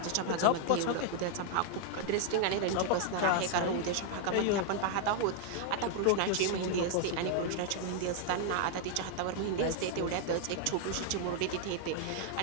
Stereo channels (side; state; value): both; different; correlation 0.00